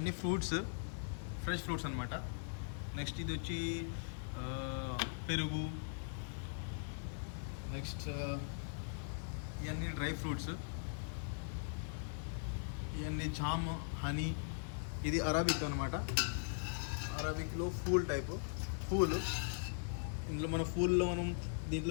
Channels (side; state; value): right; silent; 51 dB below the other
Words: ఫ్రూట్స్, ఫ్రెష్ ఫ్రూట్స్ అనమాట. నెక్స్ట్ ఇది వచ్చి పెరుగు. నెక్స్ట్ ఇవన్నీ డ్రై ఫ్రూట్స్, ఇవన్నీ జామ్, హనీ. ఇది అరాబిక్ అనమాట. అరాబిక్లో ఫూల్ టైపు ఫూల్. ఇందులో మనం